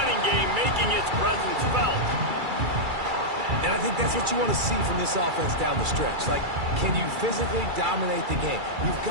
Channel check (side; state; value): left; late; 2.3 ms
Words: game, making its presence felt. And I think that's what you want to see from this offense down the stretch. Like, can you physically dominate the game? You've